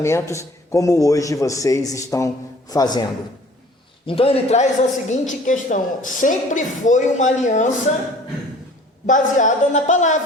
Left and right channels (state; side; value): normal; both; correlation 0.50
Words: como hoje vocês estão fazendo. Então ele traz a seguinte questão: sempre foi uma aliança baseada na